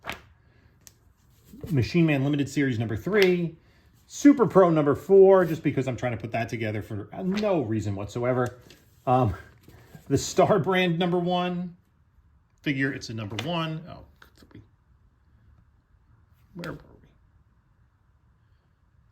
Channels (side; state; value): both; identical; correlation 1.00